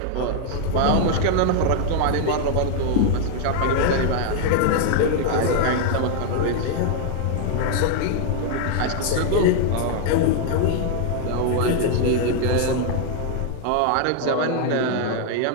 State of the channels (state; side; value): different; both; correlation 0.00